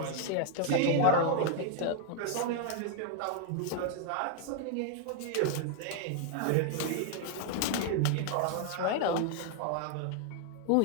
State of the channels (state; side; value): different; both; correlation 0.00